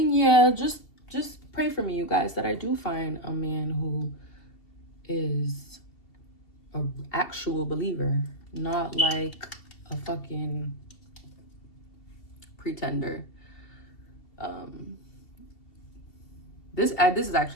just pray for me, you guys, that I do find a man who is an actual believer, not like a fucking pretender. This is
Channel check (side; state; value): right; late; 2.7 ms